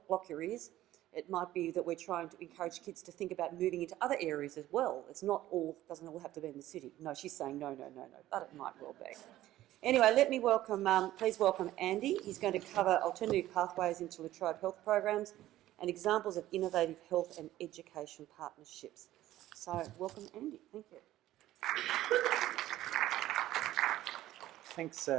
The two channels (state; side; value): quieter; left; 14.5 dB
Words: block your ears. It might be that we're trying to encourage kids to think about moving into other areas as well. It's not all, doesn't all have to be in the city. No, she's saying no, but it might well be. Anyway, let me welcome, please welcome Andy. He's going to cover alternative pathways into La Trobe health programs and examples of innovative health and education partnerships. So, welcome Andy. Thank you.